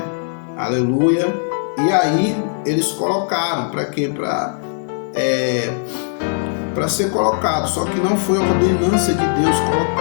Aleluia. E aí eles colocaram para quê? Para ser colocado, só que não foi a ordenança de Deus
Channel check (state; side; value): silent; right; digital silence